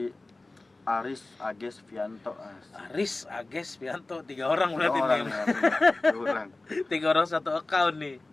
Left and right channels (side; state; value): right; quieter; 3.1 dB